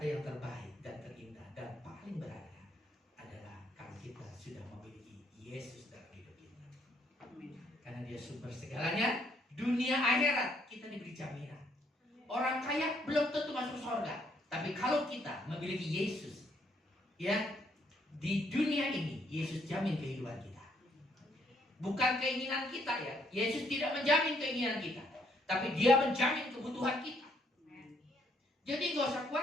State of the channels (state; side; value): normal; both; correlation 0.70